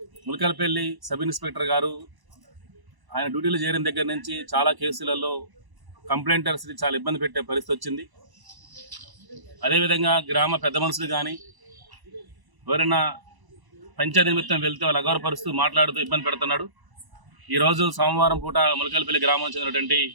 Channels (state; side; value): late; left; 1.0 ms